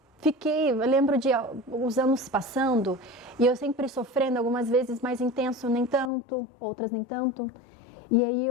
lembro de os anos passando e eu sempre sofrendo, algumas vezes mais intenso, nem tanto, outras nem tanto. E aí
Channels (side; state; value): right; drops out; at 6.1 s